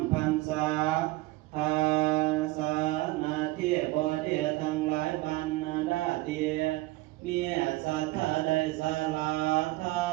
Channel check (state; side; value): quieter; left; 19.5 dB